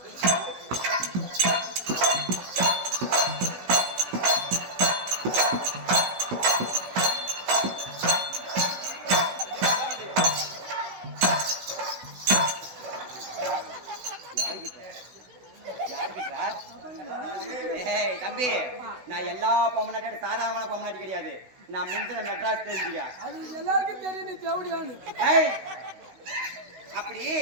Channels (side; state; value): left; late; 16 ms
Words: தம்பி, நான் எல்லா பொம்மநாட்டியோட சாதாரணமான பொம்மநாட்டி கிடையாது. நான் முந்தின மெட்ராஸ் தெரிஞ்சுக்க. அது எல்லாருக்கும் தெரியும். நீ தேவடியானு அப்படி